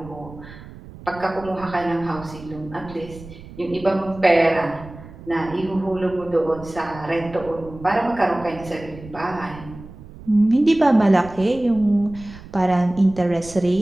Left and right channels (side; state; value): right; noise; rumble, 17 dB below the sound